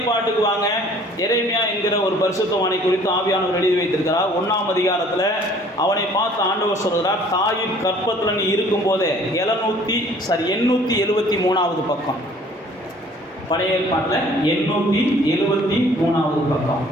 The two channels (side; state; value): both; normal; correlation 0.54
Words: வாங்க. எரேமியா என்கிற ஒரு பரிசுத்தவானை குறித்து ஆவியானவர் எழுதி வைத்திருக்கிறார். 1ஆம் அதிகாரத்தில் அவனை பார்த்து ஆண்டவர் சொல்கிறார், தாயின் கற்பத்தில் நீ இருக்கும் போதே 873வது பக்கம். பழைய ஏற்பாட்டில் 873வது பக்கம்.